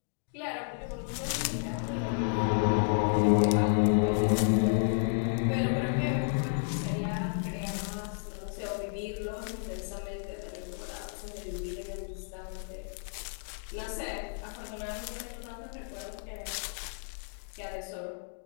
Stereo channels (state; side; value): silent; right; digital silence